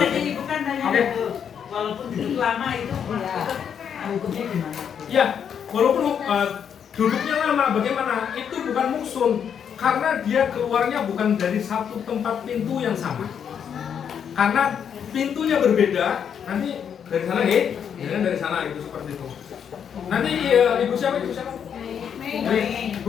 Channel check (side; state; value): right; quieter; 8.0 dB